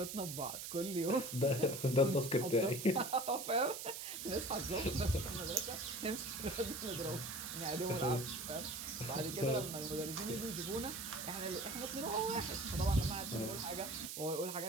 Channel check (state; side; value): noise; right; hiss, 7 dB below the sound